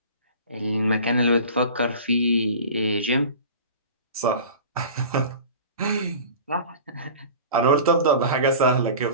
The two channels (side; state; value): both; inverted; correlation -0.39